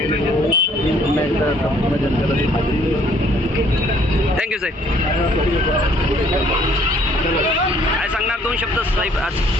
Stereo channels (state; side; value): normal; both; correlation 0.62